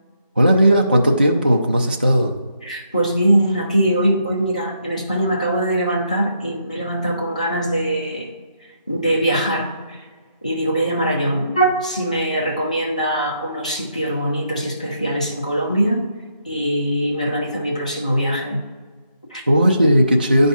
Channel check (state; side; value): inverted; both; correlation -0.76